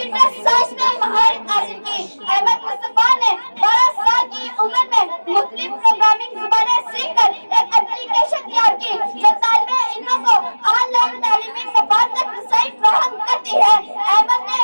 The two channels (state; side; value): inverted; both; correlation -1.00